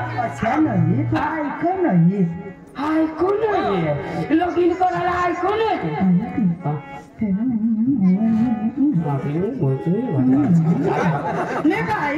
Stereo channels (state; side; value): identical; both; correlation 1.00